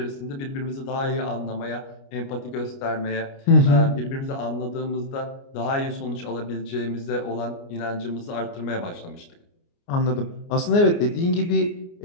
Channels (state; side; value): late; right; 29 ms